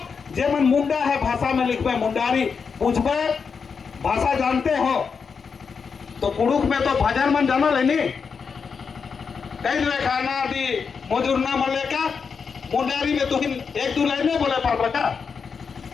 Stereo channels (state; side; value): quieter; right; 5.8 dB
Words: जेमन मुंडा है भाषा में लिखबे मुंडारी। पूछबे भाषा जानते हो तो कुड़ुक में तो भजन मन जाना लेनी, कई लेखाना दी मजूरना मले का, मुंडारी में तो 1-2 लाइन बोले पड़ रखा।